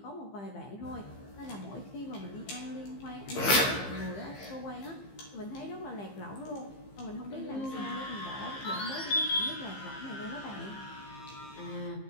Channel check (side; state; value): right; late; 15 ms